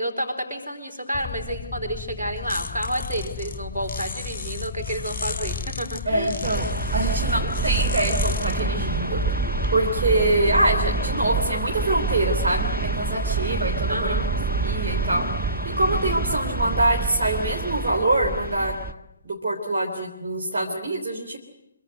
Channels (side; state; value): both; inverted; correlation -0.45